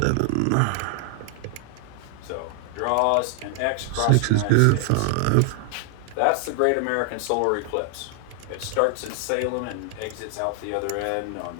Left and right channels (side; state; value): both; different; correlation 0.00